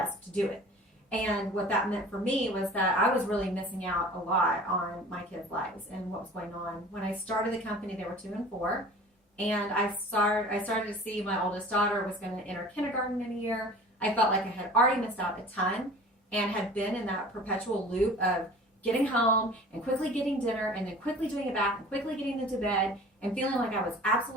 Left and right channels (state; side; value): normal; both; correlation 0.43